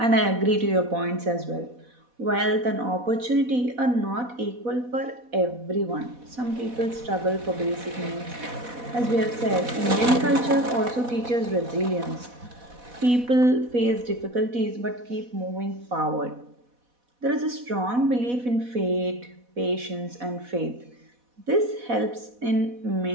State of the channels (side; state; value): left; late; 4.1 ms